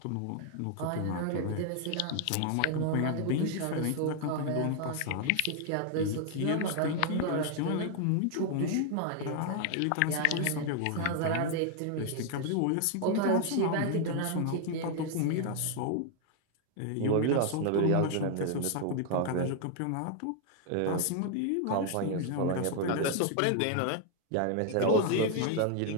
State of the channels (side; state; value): both; different; correlation 0.00